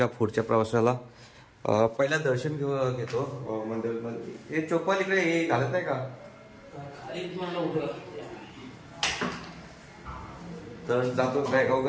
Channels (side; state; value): both; identical; correlation 1.00